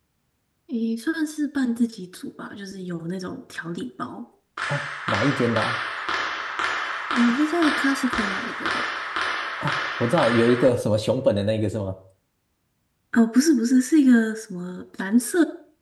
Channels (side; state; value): both; identical; correlation 1.00